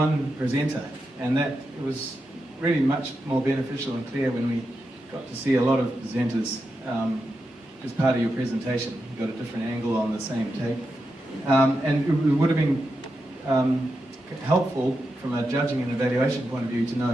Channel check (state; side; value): normal; both; correlation 0.88